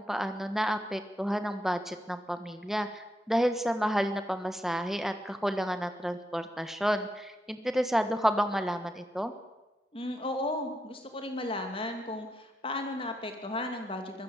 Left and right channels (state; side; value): normal; both; correlation 0.83